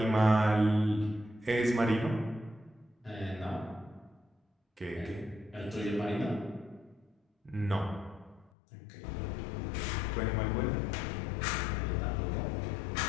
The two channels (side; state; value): right; drops out; at 8.5 s